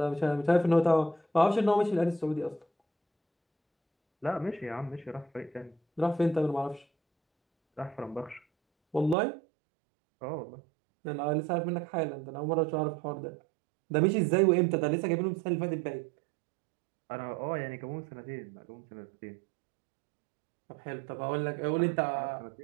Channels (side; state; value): left; drops out; at 9.2 s